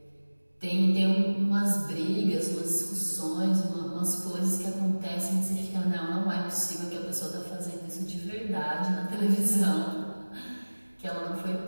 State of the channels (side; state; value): both; inverted; correlation -1.00